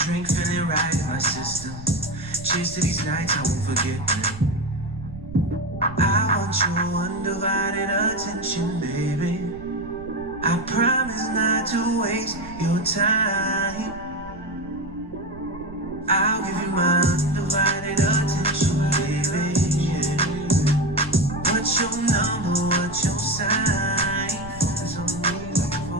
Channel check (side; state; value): right; noise; rumble, 17 dB below the sound